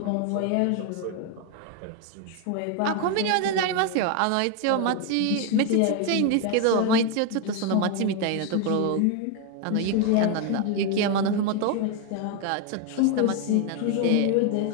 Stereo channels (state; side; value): different; both; correlation 0.01